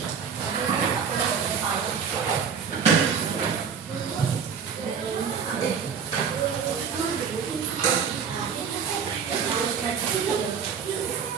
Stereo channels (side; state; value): left; quieter; 6.8 dB